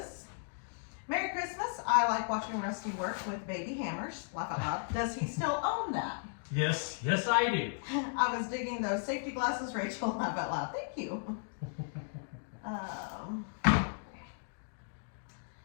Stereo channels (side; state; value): right; silent; digital silence